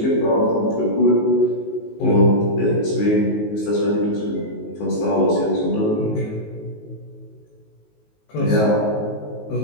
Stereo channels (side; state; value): right; late; 19 ms